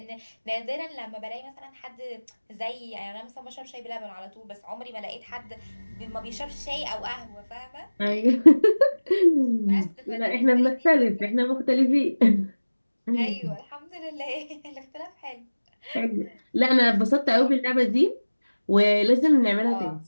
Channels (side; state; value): both; inverted; correlation -1.00